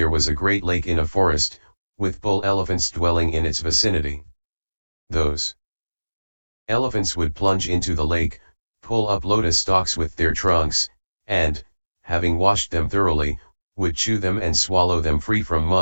was a great lake in a forest, with bull elephants dwelling in its vicinity. Those elephants would plunge into the lake, pull up lotus stalks with their trunks, and, having washed them thoroughly, would chew them and swallow them free from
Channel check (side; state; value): both; inverted; correlation -1.00